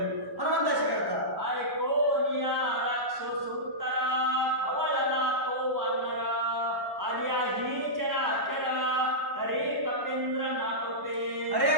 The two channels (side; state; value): left; late; 1.1 ms